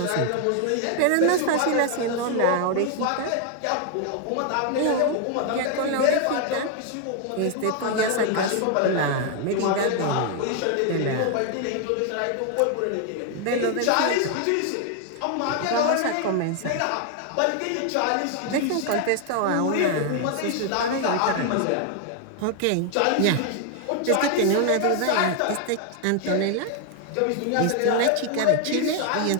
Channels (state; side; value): different; both; correlation 0.00